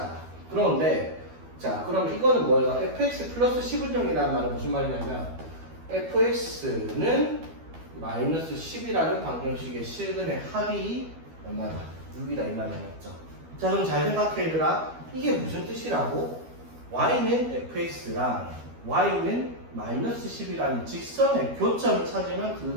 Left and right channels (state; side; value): late; left; 12 ms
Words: 그런데 자, 그럼 이거는 뭐예요? fx 플러스 10운용이라는 말은 무슨 말이냐면 fx는 마이너스 10이라는 방정식의 실근의 합이 얼마다? 6이다 이 말이 맞죠? 자, 그럼 잘 생각해 얘들아. 이게 무슨 뜻이라고? y는 fx랑 y는 마이너스 10이라는 직선의 교점을 찾으면